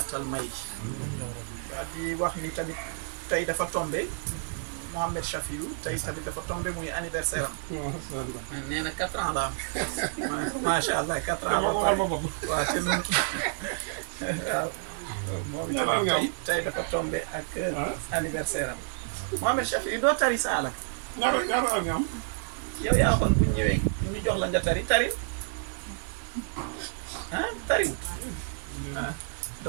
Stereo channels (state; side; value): silent; left; digital silence